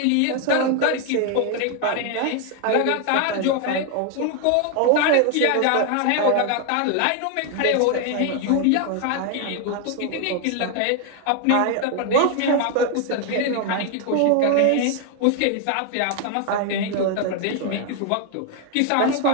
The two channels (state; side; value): different; both; correlation 0.01